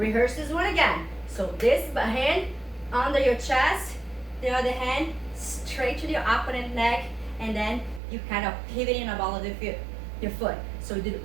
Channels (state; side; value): drops out; left; at 8.0 s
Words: this one again. So this hand under your chest, the other hand straight to your opponent neck, and then you kind of pivot in the ball of your foot. So you do